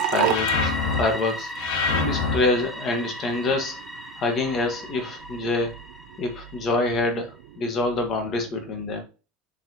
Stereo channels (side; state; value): both; normal; correlation 0.27